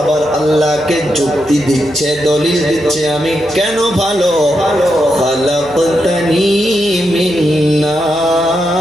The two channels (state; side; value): noise; left; hum, 24 dB below the sound